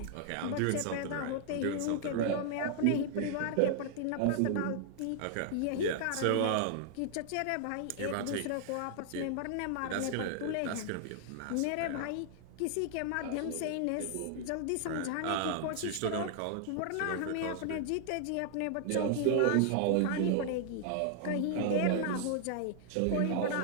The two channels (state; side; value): different; both; correlation -0.01